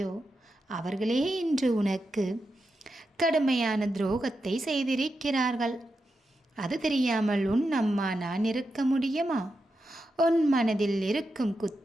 அவர்களே இன்று உனக்கு கடுமையான துரோகத்தை செய்திருக்கிறார்கள். அது தெரியாமல் உன் அம்மா நான் இருக்க முடியுமா? உன் மனதில் இருக்கும்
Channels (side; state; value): both; normal; correlation 0.88